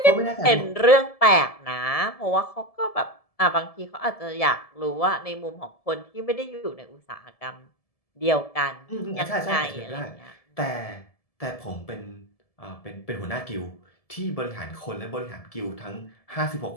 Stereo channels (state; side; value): late; right; 1.7 ms